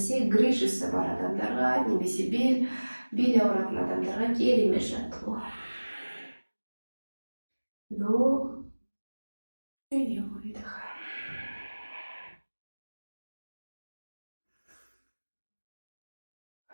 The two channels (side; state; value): both; inverted; correlation -1.00